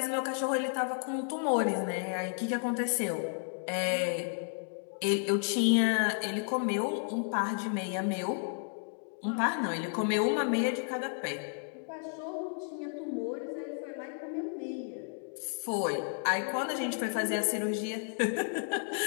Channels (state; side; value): silent; right; 56 dB below the other